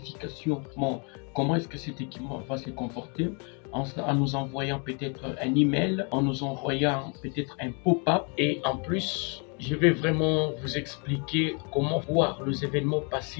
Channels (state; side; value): quieter; right; 36.2 dB